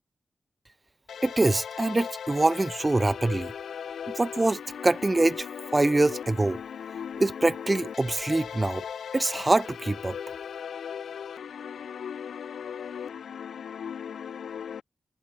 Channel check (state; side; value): normal; both; correlation 0.96